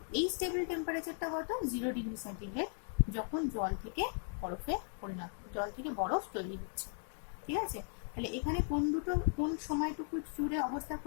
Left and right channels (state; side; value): silent; right; 53 dB below the other